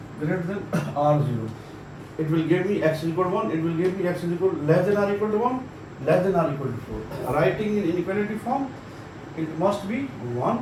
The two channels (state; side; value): identical; both; correlation 1.00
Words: greater than or 0. It will give me x is equal to 1. It will give me x is equal to less than or equal to 1, less than or equal to 4. Writing in inequality form, it must be